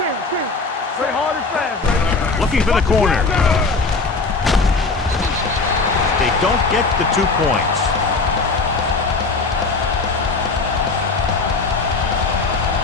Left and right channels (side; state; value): right; quieter; 4.0 dB